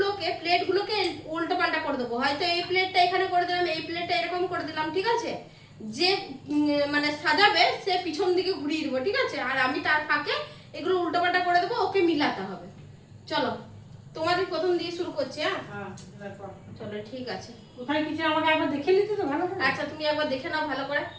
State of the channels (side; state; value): both; identical; correlation 1.00